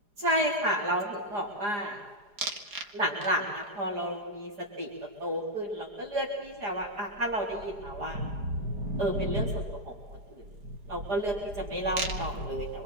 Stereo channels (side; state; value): left; late; 4.9 ms